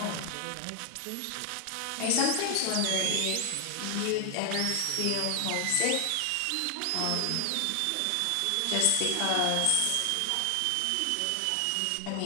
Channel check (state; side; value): different; both; correlation 0.00